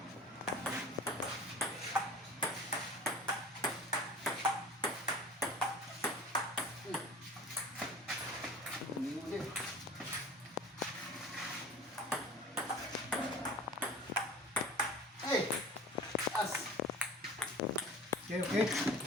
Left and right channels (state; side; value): normal; both; correlation 0.39